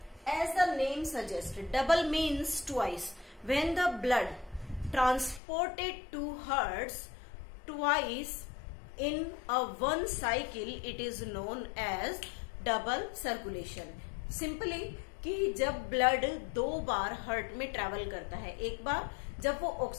As the name suggests, double means twice. When the blood transported to hearts twice in a one cycle, it is known as double circulation. Simply कि जब ब्लड दो बार हार्ट में ट्रेवल करता है, एक बार जब वो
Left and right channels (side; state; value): right; drops out; at 5.4 s